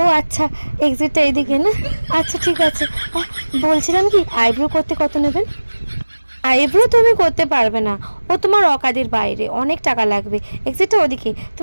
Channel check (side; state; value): both; inverted; correlation -1.00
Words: ও আচ্ছা, এক্সিটটা এইদিকে না? আচ্ছা ঠিক আছে। বলছিলাম কি, আইব্রো করতে কত নেবেন? আইব্রো তুমি করতে পারবে না, ও তোমার অকাদের বাইরে, অনেক টাকা লাগবে। এক্সিটটা ওদিকে,